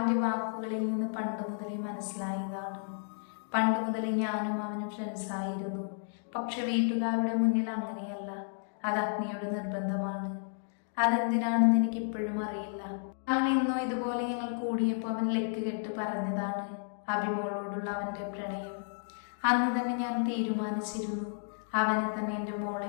വാക്കുകളിൽ നിന്ന് പണ്ട് മുതലേ മനസ്സിലായതാണ്. പണ്ട് മുതലേ ഞാനും അവനും ഫ്രണ്ട്സായിരുന്നു. പക്ഷെ വീട്ടുകാരുടെ മുന്നിൽ അങ്ങനെയല്ല. അത് അഗ്നിയുടെ നിർബന്ധമാണ്. അതെന്തിനാണെന്ന് എനിക്കിപ്പോഴും അറിയില്ല. അങ്ങനെ എന്നോ ഇതുപോലെ ഞങ്ങൾ കൂടിയപ്പോൾ അവൻ ലെക്ക് കെട്ട് പറഞ്ഞതാണ് അഭിമോളോടുള്ള അവൻ്റെ പ്രണയം. അന്ന് തന്നെ ഞാൻ തീരുമാനിച്ചിരുന്നു അവനെ തന്നെ എൻ്റെ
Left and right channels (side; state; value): right; silent; digital silence